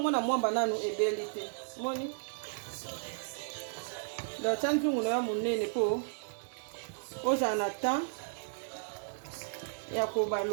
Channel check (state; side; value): silent; left; 55 dB below the other